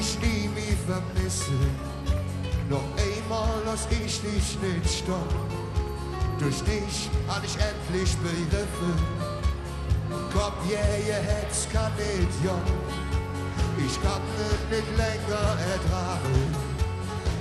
nie mehr vermissen. Noch einmal lass ich dich nicht stoppen. Durch dich hab ich endlich begriffen. Komm, ihr Herz kann nicht jung. Ich kann es nicht länger ertragen.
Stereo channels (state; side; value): identical; both; correlation 1.00